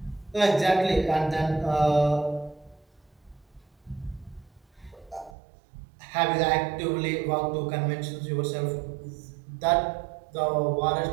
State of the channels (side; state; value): left; drops out; at 5.4 s